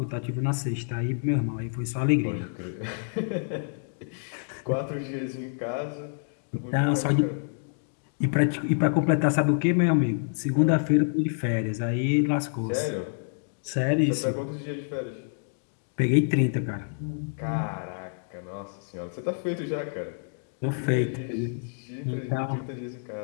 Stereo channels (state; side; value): silent; right; digital silence